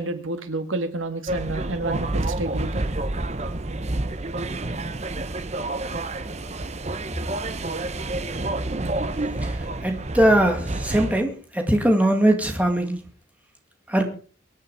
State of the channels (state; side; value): normal; both; correlation 0.74